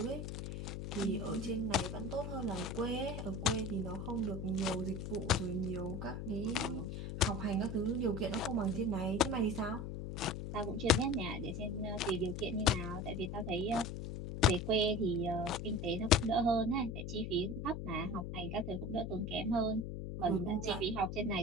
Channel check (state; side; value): noise; left; hum, 5 dB below the sound